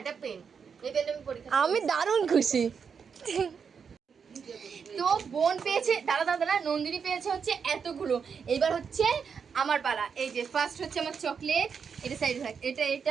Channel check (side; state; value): left; quieter; 6.4 dB